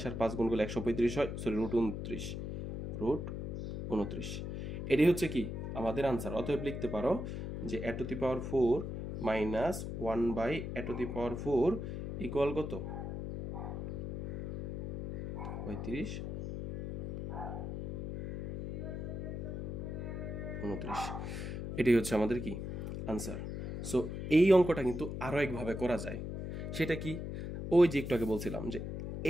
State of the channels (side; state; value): left; noise; hum, 5 dB below the sound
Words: আর 5 গুণ করলে 135 হয়, সরি √29। এটি হচ্ছে কি আমাদের আনসার। অতএব লিখতে পারো যে a to the power 4 minus 1/a to the power 4 equal কত 35/29। এটাই হচ্ছে আমাদের কি আনসার। সো এই অঙ্কটা কিন্তু আরও একভাবে করা যায়। সেটা কি, ওই যে একটু আগে বলছিলাম যে